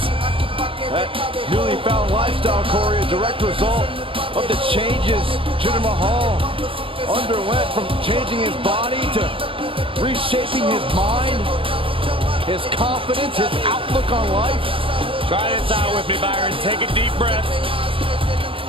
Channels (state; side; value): late; left; 0.26 ms